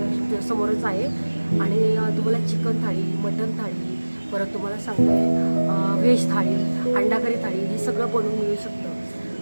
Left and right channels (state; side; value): inverted; both; correlation -1.00